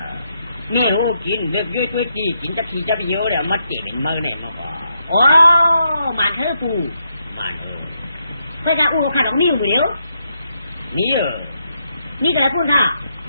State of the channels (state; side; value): inverted; both; correlation -0.80